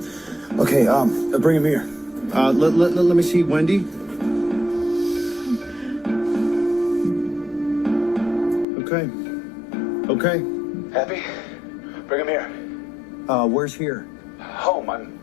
Okay, bring him here. Let me see Wendy. Okay. Okay. Happy? Bring him here. Where's here? Home. I'm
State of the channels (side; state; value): right; drops out; at 8.7 s